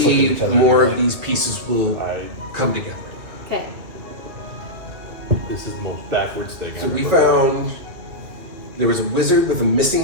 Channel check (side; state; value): left; late; 2.7 ms